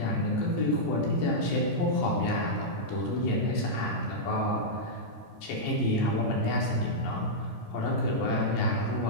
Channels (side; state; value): right; late; 13 ms